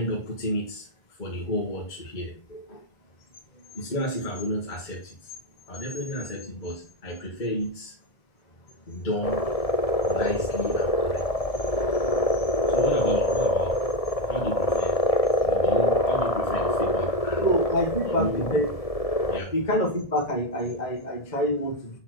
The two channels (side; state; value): right; late; 1.7 ms